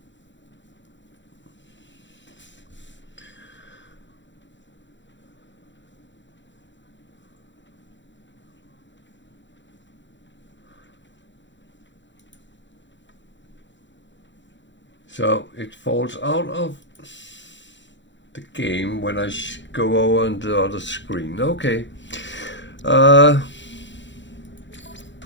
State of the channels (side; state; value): right; late; 0.54 ms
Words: So it falls out of the game when I go over on the other screen. Okay. Component